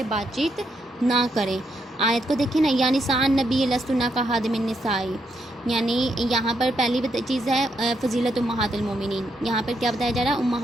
بات چیت نہ کریں. آیت کو دیکھیں نا، یا نساء النبی لستن کاحد من النساء، یعنی یہاں پر پہلی چیز ہے فضیلت امہات المومنین. یہاں پر کیا بتایا جا رہا ہے؟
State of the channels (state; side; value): normal; both; correlation 0.78